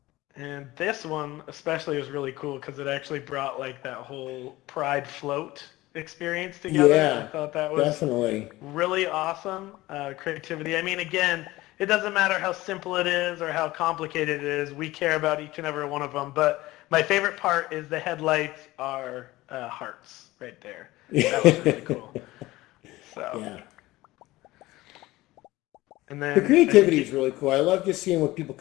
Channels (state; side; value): quieter; right; 18.4 dB